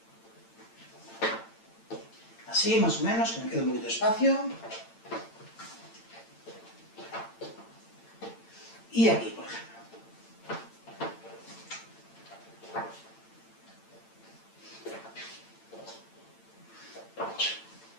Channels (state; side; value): late; right; 8.9 ms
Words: así, más o menos, que me quede un poquito de espacio. Y aquí, por ejemplo.